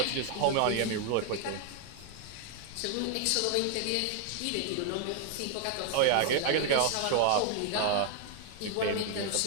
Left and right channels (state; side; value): different; both; correlation 0.00